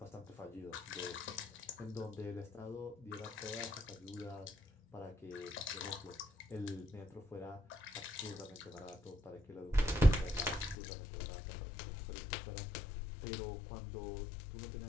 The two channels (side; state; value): right; drops out; at 10.8 s